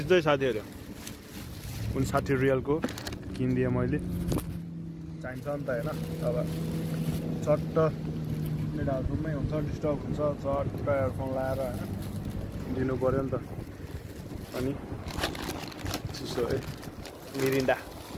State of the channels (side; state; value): both; identical; correlation 1.00